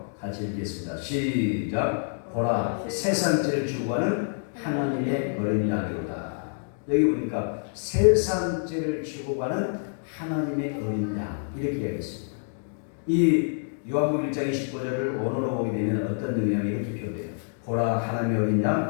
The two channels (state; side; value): silent; right; digital silence